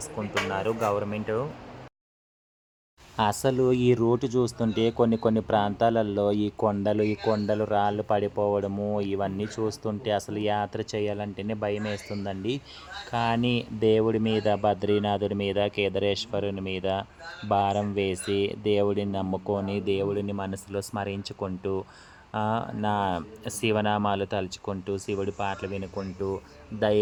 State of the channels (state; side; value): identical; both; correlation 1.00